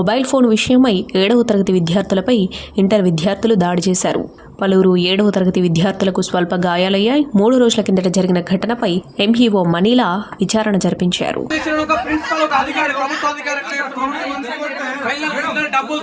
ఫోన్ విషయమై 7వ తరగతి విద్యార్థులపై ఇంటర్ విద్యార్థులు దాడి చేశారు. పలువురు 7వ తరగతి విద్యార్థులకు స్వల్ప గాయాలయ్యాయి. 3 రోజుల కిందట జరిగిన ఘటనపై ఎంఈఓ మనీలా విచారణ జరిపించారు.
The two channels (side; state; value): both; identical; correlation 1.00